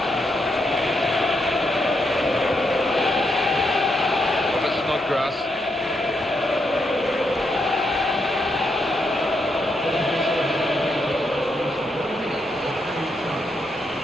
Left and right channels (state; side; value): normal; both; correlation 0.80